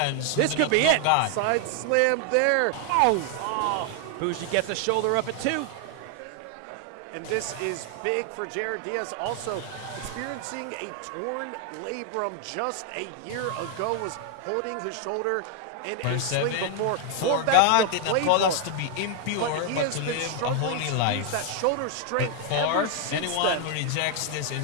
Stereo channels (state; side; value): different; both; correlation 0.00